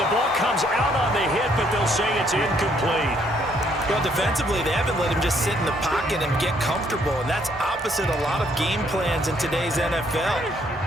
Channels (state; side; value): normal; both; correlation 0.68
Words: the ball comes out on the hit, but they'll say it's incomplete. Well, defensively, they haven't let him just sit in the pocket and get comfortable, and that's opposite a lot of game plans in today's NFL.